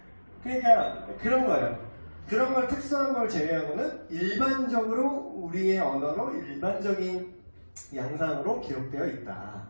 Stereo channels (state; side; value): inverted; both; correlation -1.00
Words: 그러니까 그런 거예요. 그런 걸 특수한 걸 제외하고는 일반적으로 우리의 언어로 일반적인 양상으로 기록되어 있다.